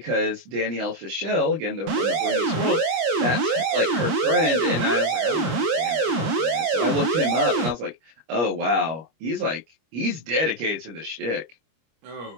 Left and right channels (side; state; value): left; late; 25 ms